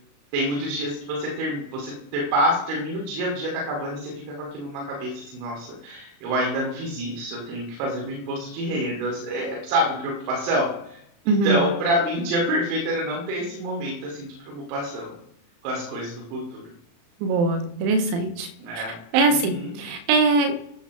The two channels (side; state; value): left; late; 35 ms